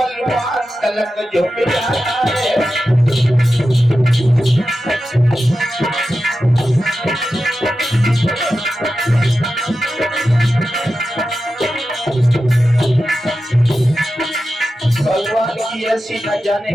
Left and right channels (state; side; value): normal; both; correlation 0.92